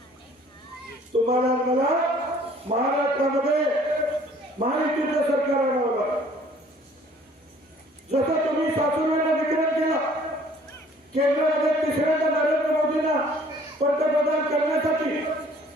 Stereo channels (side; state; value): both; normal; correlation 0.55